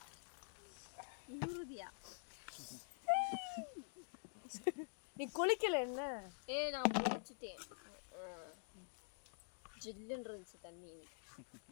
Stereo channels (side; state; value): right; silent; digital silence